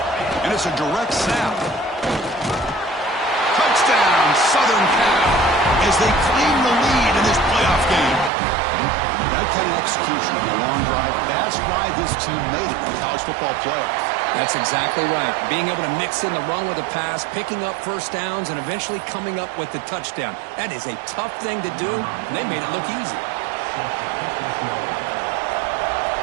And it's a direct snap. Touchdown, Southern Cal, as they claim the lead in this playoff game. That kind of execution on the long drive, that's why this team made it in the college football playoff. That's exactly right. Being able to mix in the run with the pass, picking up first downs, and eventually coming up with the touchdown. That is a tough thing to do, and they made it look easy.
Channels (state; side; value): drops out; left; at 8.3 s